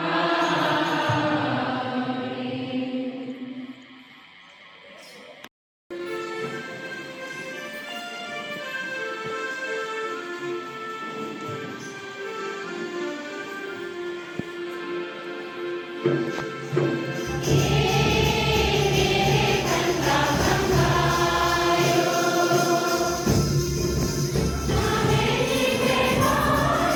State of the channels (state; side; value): identical; both; correlation 1.00